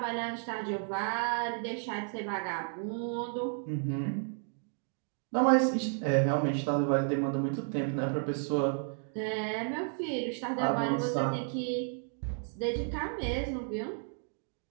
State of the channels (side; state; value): left; silent; 56 dB below the other